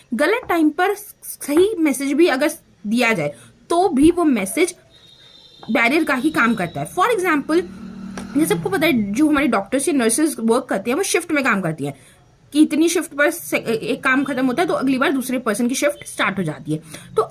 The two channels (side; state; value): both; identical; correlation 1.00